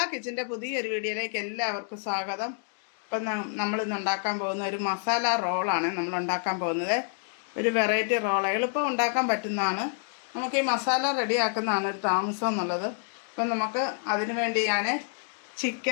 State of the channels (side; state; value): right; silent; 59 dB below the other